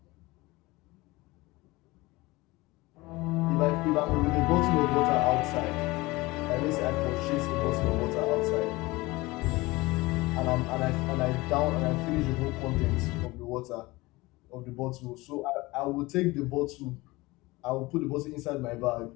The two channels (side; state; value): right; quieter; 21.5 dB